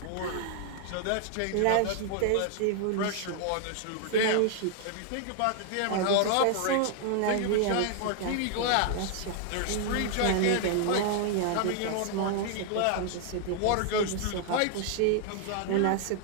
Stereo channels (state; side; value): different; both; correlation 0.00